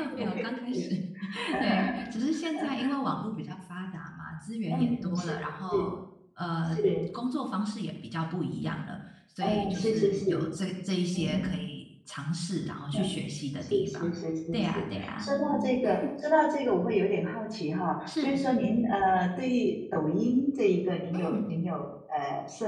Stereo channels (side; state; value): both; identical; correlation 1.00